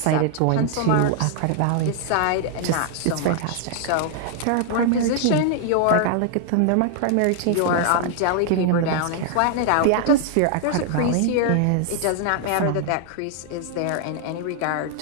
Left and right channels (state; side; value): different; both; correlation 0.00